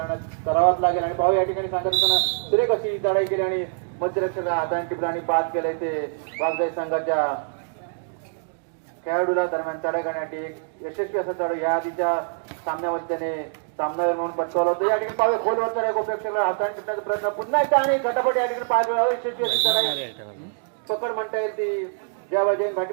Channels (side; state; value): left; silent; digital silence